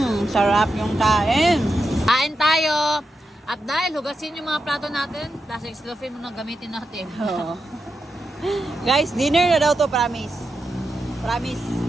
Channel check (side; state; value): both; normal; correlation 0.88